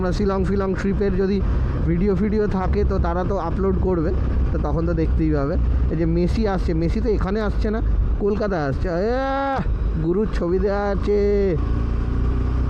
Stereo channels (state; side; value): identical; both; correlation 1.00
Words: শিলং ট্রিপের যদি ভিডিও থাকে তো তারা তো আপলোড করবে, তো তখন তো দেখতেই পাবে। এই যে মেসি আসছে, মেসি তো এখানে আসছে না, কলকাতায় আসছে। গুরুর ছবি দেওয়া আছে।